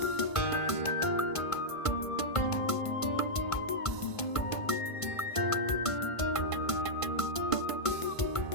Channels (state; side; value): late; right; 1.5 ms